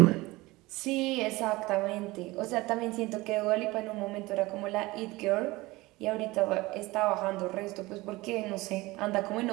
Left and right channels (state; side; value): quieter; left; 20.8 dB